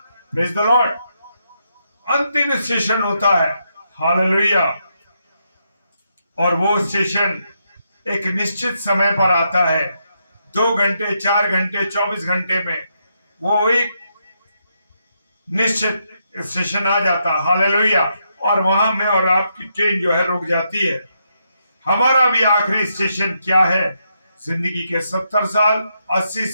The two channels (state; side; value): inverted; both; correlation -0.80